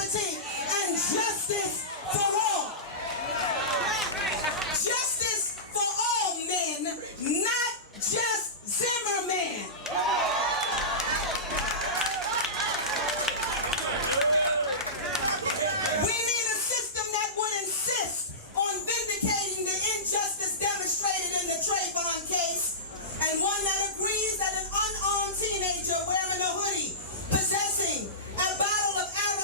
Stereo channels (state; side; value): normal; both; correlation -0.19